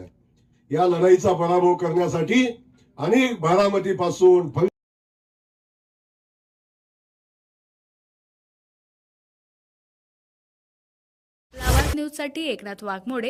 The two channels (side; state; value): both; identical; correlation 1.00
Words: या लढाईचा पराभव करण्यासाठी अनेक बारामतीपासून लावाद न्यूजसाठी एकनाथ